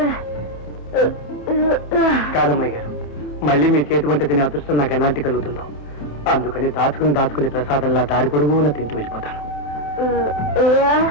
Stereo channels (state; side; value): late; right; 28 ms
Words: కాదమ్మాయి గారు, మళ్ళీ మీ చేతి వంట తినే అదృష్టం నాకు ఎలాంటి కలుగుతుందో, అందుకని దాచుకుని ప్రసాదంలా దారి పొడుగున తింటూ వెళ్ళిపోతాను.